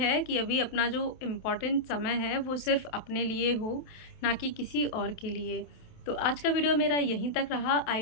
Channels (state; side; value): late; right; 28 ms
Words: कि अभी अपना जो इम्पोर्टेंट समय है वो सिर्फ़ अपने लिए हो, ना कि किसी और के लिए। तो आज का वीडियो मेरा यहीं तक रहा।